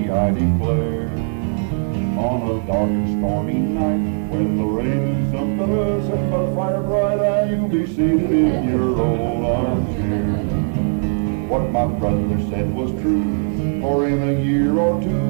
I declare. On a dark and stormy night, when the rain is up below, sitting by the fire bright eye, you'll be seated in your old armchair. What my brother said was true, for in a year or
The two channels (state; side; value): silent; left; digital silence